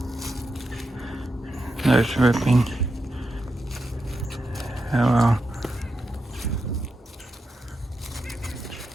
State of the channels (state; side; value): normal; both; correlation 0.87